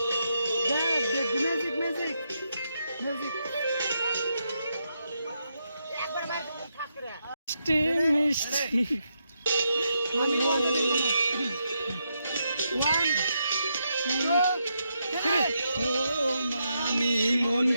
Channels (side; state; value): both; inverted; correlation -0.82